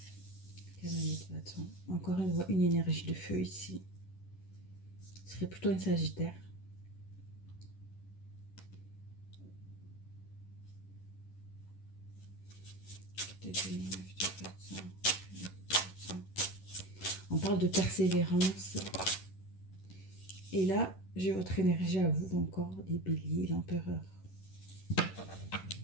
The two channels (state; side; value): late; right; 11 ms